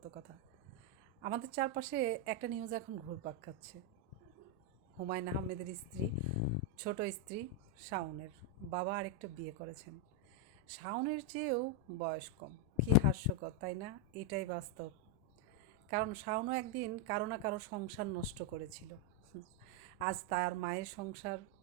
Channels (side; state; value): both; normal; correlation 0.01